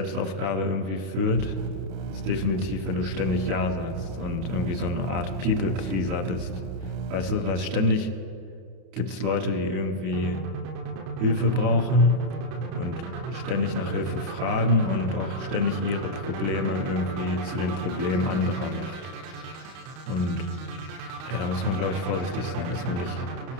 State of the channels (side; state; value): left; late; 32 ms